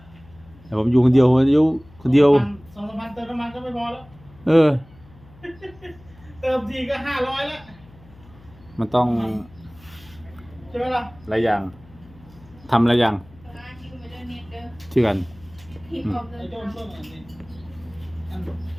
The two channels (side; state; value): left; noise; hum, 24 dB below the sound